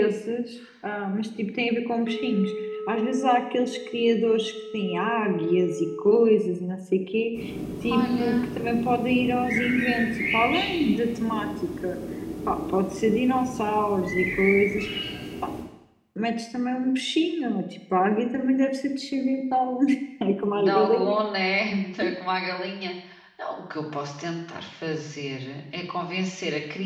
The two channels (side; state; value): both; identical; correlation 1.00